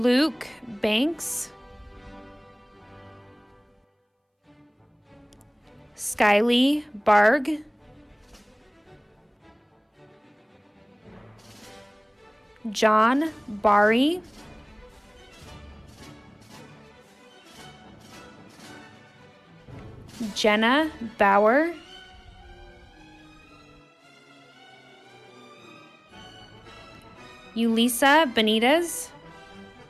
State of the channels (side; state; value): both; identical; correlation 1.00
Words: Banks, Skyly Barg, John Bari, Jenna Bauer, Ulisa Benitez,